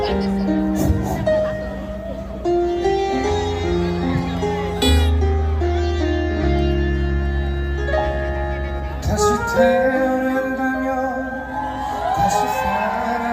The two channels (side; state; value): both; identical; correlation 1.00